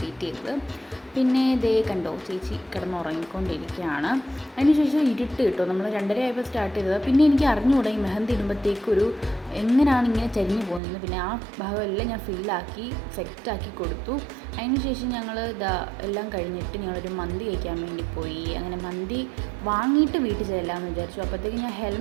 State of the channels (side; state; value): left; drops out; at 10.8 s